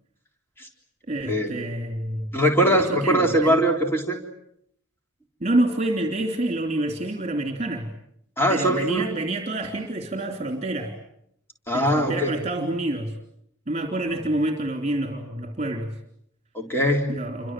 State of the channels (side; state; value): both; normal; correlation 0.41